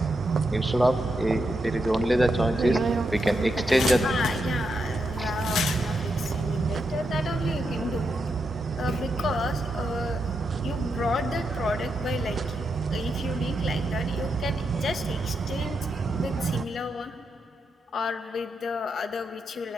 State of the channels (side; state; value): both; normal; correlation 0.83